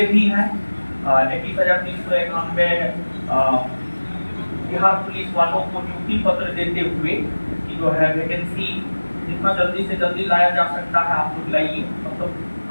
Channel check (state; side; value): inverted; both; correlation -1.00